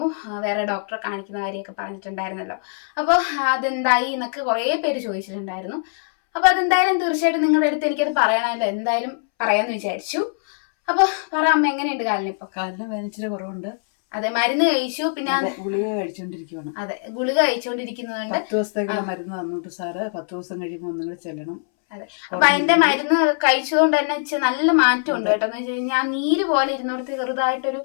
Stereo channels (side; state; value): right; silent; 64 dB below the other